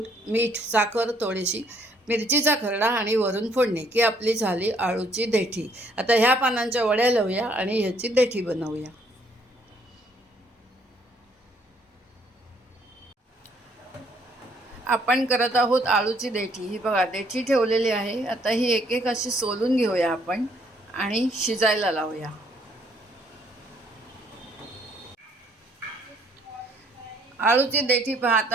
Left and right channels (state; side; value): normal; both; correlation 0.66